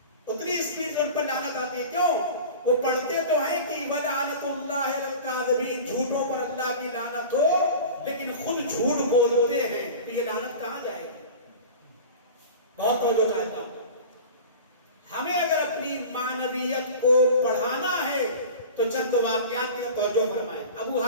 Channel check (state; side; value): inverted; both; correlation -0.36